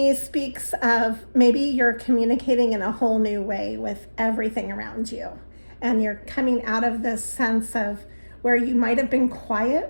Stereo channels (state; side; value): inverted; both; correlation -1.00